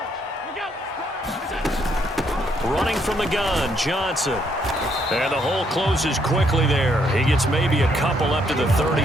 Running from the gun, Johnson. And the hole closes quickly there. He gets maybe a couple up to the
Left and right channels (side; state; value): both; normal; correlation 0.72